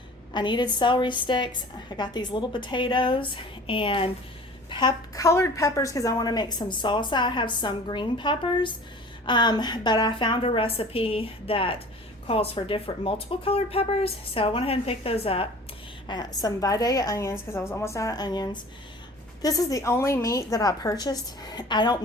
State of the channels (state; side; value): normal; both; correlation 0.44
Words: I needed celery sticks. I got these little potatoes and colored peppers because I want to make some salsa. I have some green peppers, but I found a recipe that calls for multiple colored peppers, so I went ahead and picked those up. Some Vidalia onions because I was almost out of onions. This is the only meat that I purchased. I don't